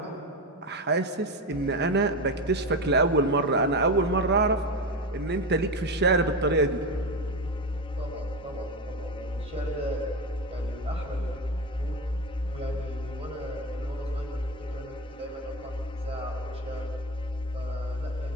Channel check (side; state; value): both; normal; correlation 0.18